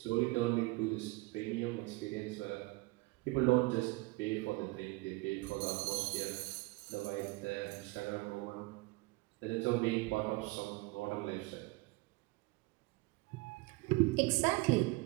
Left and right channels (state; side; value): quieter; left; 23.7 dB